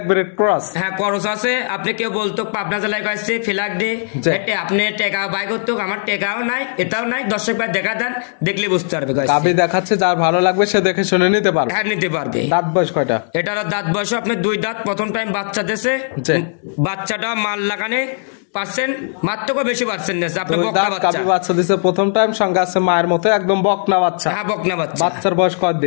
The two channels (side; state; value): right; silent; digital silence